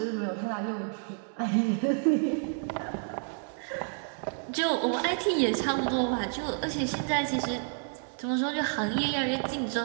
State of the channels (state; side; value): silent; left; 58 dB below the other